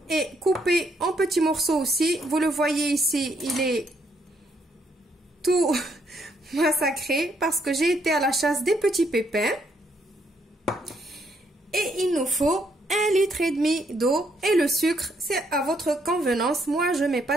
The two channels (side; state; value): both; normal; correlation 0.73